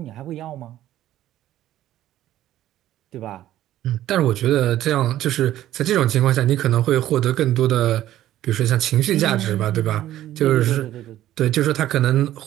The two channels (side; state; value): left; quieter; 13.3 dB